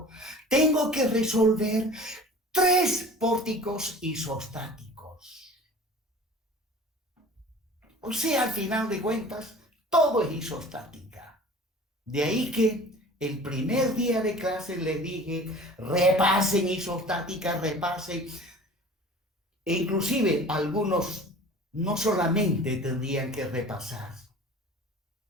tengo que resolver 3 pórticos isostáticos. O sea, al final de cuentas, todo es isostática. De ahí que el primer día de clase les dije, repasen isostática, repasen. E inclusive algunos no solamente tendrían que repasar,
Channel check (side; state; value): both; normal; correlation 0.43